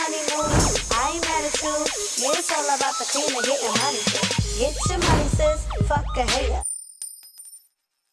move, I ain't mad at you. Yeah, it's all about the cream and getting money, sis. Get your money, sis, fuck a hater.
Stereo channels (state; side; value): identical; both; correlation 1.00